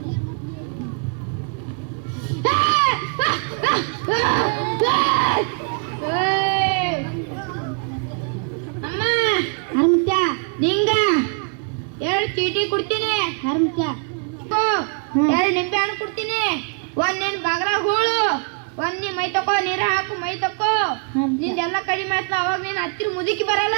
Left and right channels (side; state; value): left; quieter; 39.6 dB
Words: ಅಮ್ಮ ಹರ್ಮತ್ಯ, ನಿಂಗ 2 ಚೀಟಿ ಕೊಡ್ತೀನಿ. ಹರ್ಮತ್ಯ 2 ನಿಂಬೆ ಹಣ್ಣು ಕೊಡ್ತೀನಿ. 1 ನಿನ್ ಬಗರ ಹೂಳು, 1 ನೀ ಮೈ ತಕೋ, ನೀರ ಹಾಕು ಮೈ ತಕೋ. ನಿಂದೆಲ್ಲ ಕಡಿಮೆ ಆಯ್ತು. ಅವಾಗ ನೀನ್ ಹತ್ತಿರ ಮುದುಕಿ ಬರಲ್ಲ.